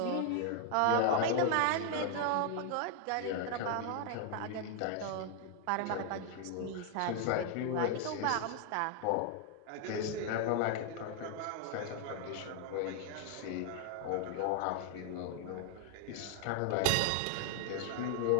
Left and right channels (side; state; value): both; different; correlation 0.00